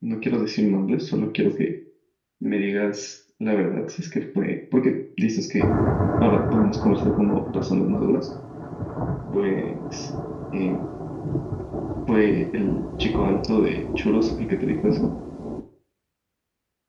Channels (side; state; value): both; identical; correlation 1.00